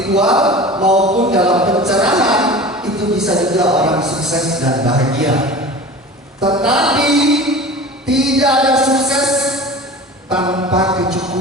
maupun dalam pencerahan itu bisa juga orang sukses dan bahagia. Tetapi tidak ada sukses tanpa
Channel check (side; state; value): both; normal; correlation 0.37